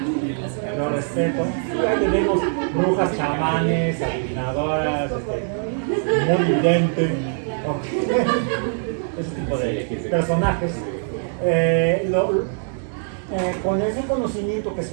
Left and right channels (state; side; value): silent; left; 64 dB below the other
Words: y ahí tenemos brujas, chamanes, adivinadoras, muy vidente, ese tipo de personajes. Con ese conocimiento que